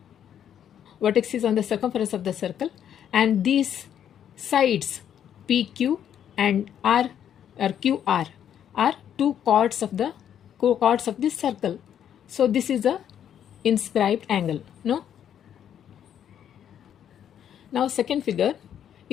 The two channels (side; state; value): right; quieter; 9.5 dB